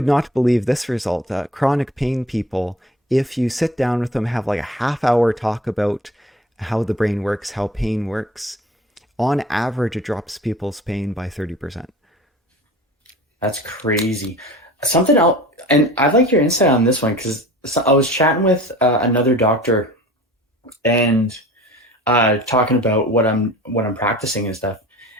not believe this result. Chronic pain people, if you sit down with them, have like a half-hour talk about how the brain works, how pain works, on average, it drops people's pain by 30%. That's crazy. Something else, and I'd like your insight on this one because I was chatting with another doctor, and talking about what I'm practicing and stuff,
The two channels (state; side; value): normal; both; correlation 0.42